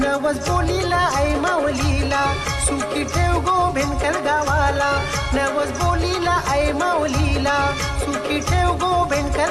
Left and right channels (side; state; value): both; identical; correlation 1.00